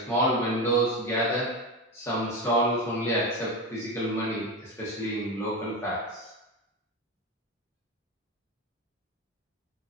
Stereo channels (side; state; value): both; normal; correlation 0.19